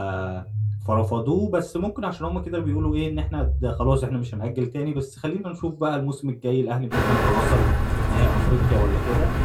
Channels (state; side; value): identical; both; correlation 1.00